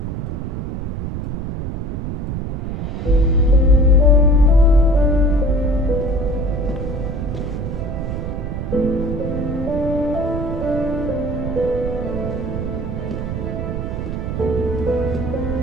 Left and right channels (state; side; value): noise; right; rumble, 4 dB below the sound